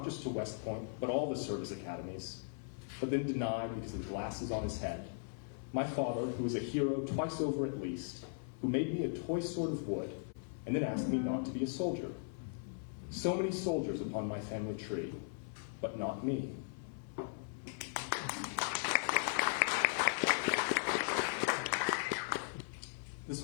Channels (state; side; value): silent; right; 52 dB below the other